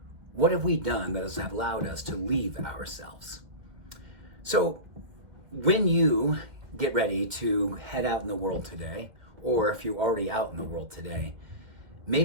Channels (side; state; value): left; late; 1.9 ms